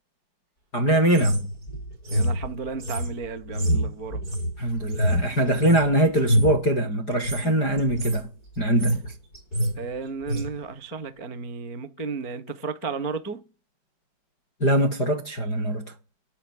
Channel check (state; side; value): late; right; 4.9 ms